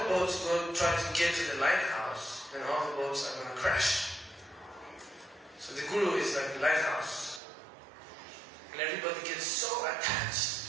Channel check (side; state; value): left; drops out; at 7.4 s